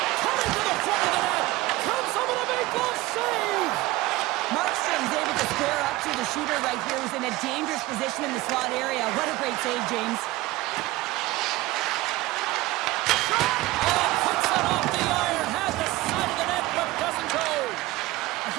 Coming to the front of the net. Comes up with a big goal save. Markstrom's able to square up to the shooter right here, who's in a dangerous position in the slot area. What a great save, James. Puts it off the iron. Has the side of the net, but doesn't go. A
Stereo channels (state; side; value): quieter; left; 18.5 dB